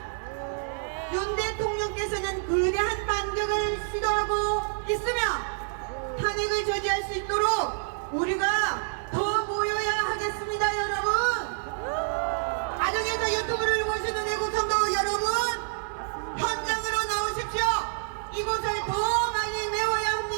윤 대통령께서는 거대한 반격을 시도하고 있으며 탄핵을 저지할 수 있도록 우리가 더 모여야 하겠습니다 여러분. 가정에서 유튜브를 보시는 애국 성도 여러분, 현장으로 나오십시오. 이곳을 더 많이 메워야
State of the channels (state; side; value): silent; left; digital silence